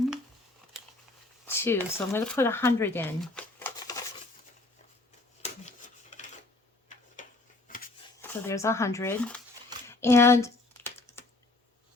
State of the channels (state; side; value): quieter; right; 3.1 dB